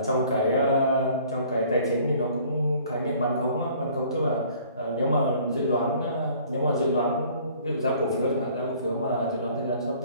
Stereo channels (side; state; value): both; inverted; correlation -0.54